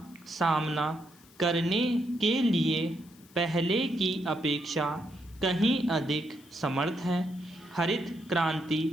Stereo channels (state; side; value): noise; left; hiss, 26 dB below the sound